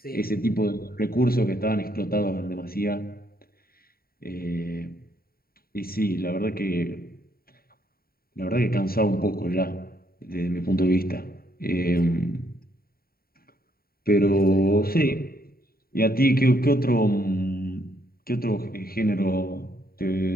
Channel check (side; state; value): right; late; 0.43 ms